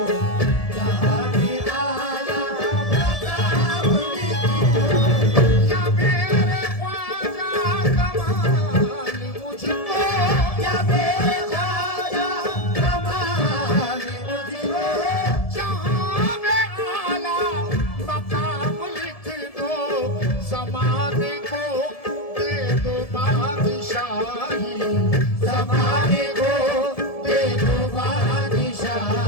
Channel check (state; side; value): late; right; 1.7 ms